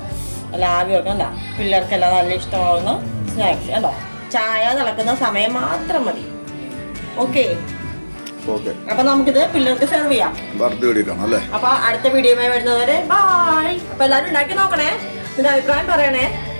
അല്ല ആവിയൊക്കെ കണ്ടോ, പിള്ളേർക്കെല്ലാം നല്ല ഇഷ്ടമാവുന്ന സ്നാക്സ് കണ്ടോ. ചായ തിളക്കുന്ന സമയം മാത്രം മതി. ഓക്കെ. അപ്പൊ നമുക്കിത് പിള്ളേർക്ക് സെർവ് ചെയ്യാം. അപ്പൊ അടുത്ത വീഡിയോയുമായി വരുന്നവരെ ബൈ. അപ്പൊ എല്ലാവരും ഉണ്ടാക്കി നോക്കണേ, ഇതിന്റെ അഭിപ്രായം പറയണേ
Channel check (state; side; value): inverted; both; correlation -1.00